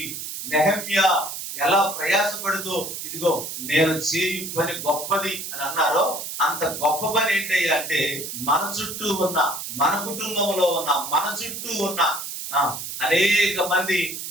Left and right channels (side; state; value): right; noise; hiss, 7 dB below the sound